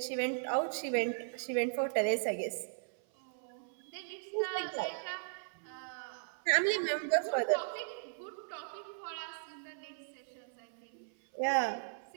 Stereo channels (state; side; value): silent; left; 53 dB below the other